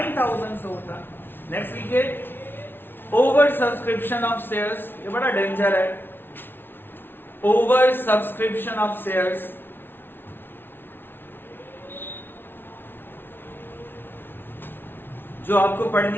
से होता। नेक्स्ट लिखिए ओवर सब्सक्रिप्शन ऑफ शेयर्स। ये बड़ा डेंजर है, ओवर सब्सक्रिप्शन ऑफ शेयर्स। जो आपको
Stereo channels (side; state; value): right; late; 0.10 ms